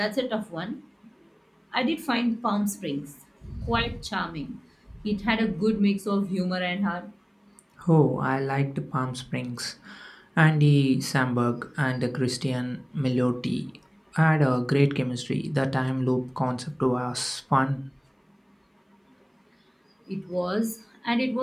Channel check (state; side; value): identical; both; correlation 1.00